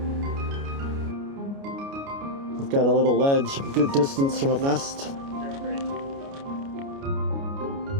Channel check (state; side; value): late; left; 29 ms